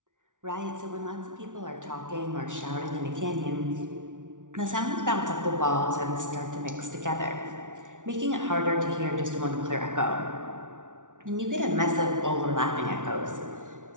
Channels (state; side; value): late; left; 0.87 ms